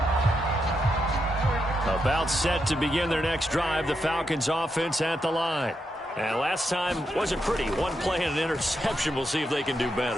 About set to begin their next drive, the Falcons offense at the line. And last time wasn't pretty. One play and an interception. We'll see if they can do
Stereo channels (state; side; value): normal; both; correlation 0.83